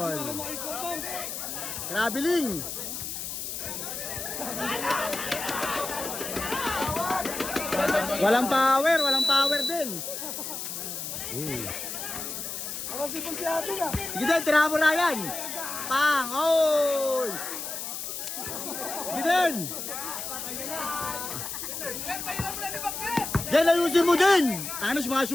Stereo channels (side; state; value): left; noise; hiss, 6 dB below the sound